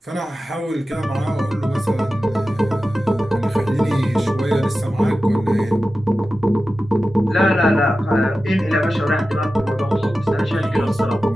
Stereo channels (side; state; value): both; normal; correlation 0.94